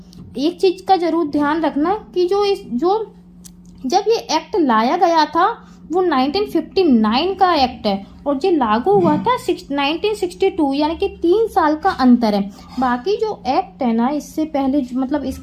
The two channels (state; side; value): identical; both; correlation 1.00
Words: एक चीज का जरूर ध्यान रखना कि जब ये एक्ट लाया गया था वो 1959 का एक्ट है और ये लागू हुआ था 1962, यानी कि 3 साल का अंतर है। बाकी जो एक्ट है ना इससे पहले, मतलब